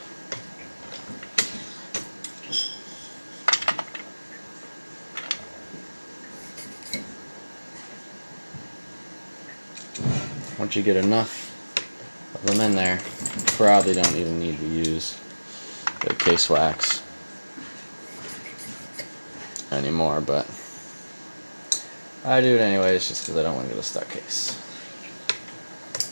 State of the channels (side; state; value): both; inverted; correlation -1.00